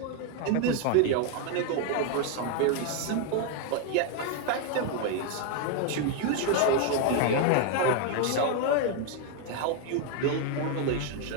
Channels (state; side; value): different; both; correlation 0.01